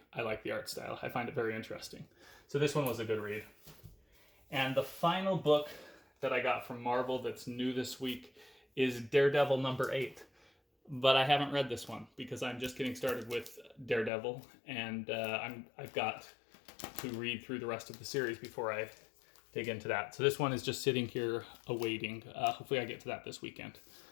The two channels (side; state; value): right; drops out; at 14.1 s